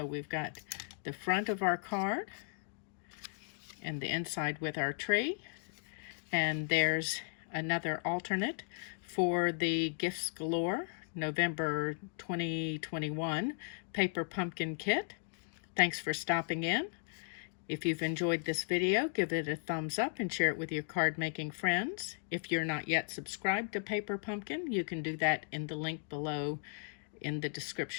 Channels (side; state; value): right; silent; digital silence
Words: we've got the front of our card and the inside with our tree. And there's another alternate for the Gifts Galore November 2021 Paper Pumpkin Kit. Thanks for stopping in. If you've enjoyed this video, give it a thumbs up and share it with your card making friends. If you're not yet subscribed to Paper Pumpkin, you can do that in the link below in the